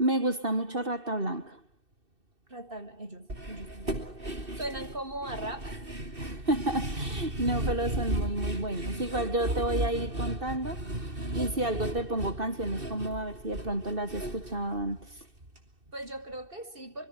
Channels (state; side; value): late; left; 2.6 ms